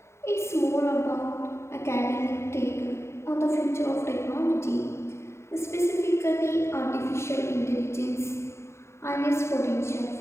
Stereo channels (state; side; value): late; right; 0.13 ms